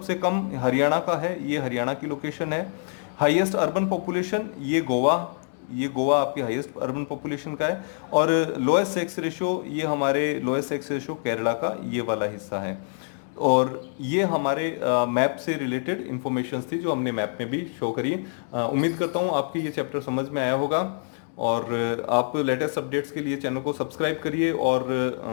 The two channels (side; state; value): right; silent; digital silence